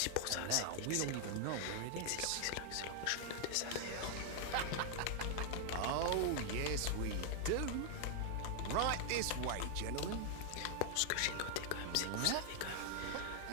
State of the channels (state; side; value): different; both; correlation 0.00